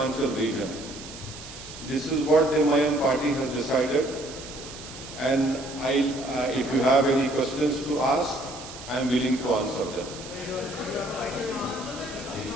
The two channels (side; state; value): right; noise; hiss, 14 dB below the sound